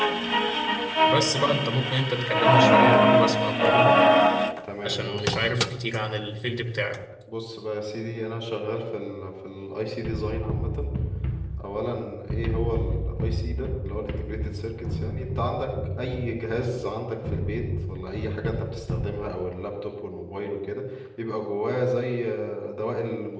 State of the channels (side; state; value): both; identical; correlation 1.00